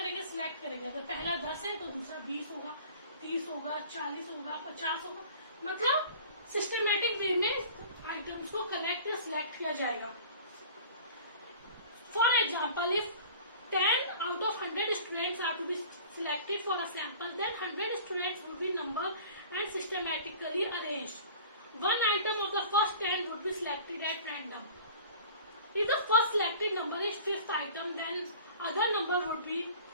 सिलेक्ट करेंगे. अगर पहला 10 है तो दूसरा 20 होगा, 30 होगा, 40 होगा, 50 होगा, मतलब सिस्टमैटिक वे में आइटम्स को कलेक्ट या सिलेक्ट किया जाएगा. For example, if 10 out of 100 students are to be selected for a sample, then 100 students would be numbered and systematically arranged. One item of the first 10 would be selected at random. If the first selected number is 5th item, then other number would be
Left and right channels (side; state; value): both; inverted; correlation -0.44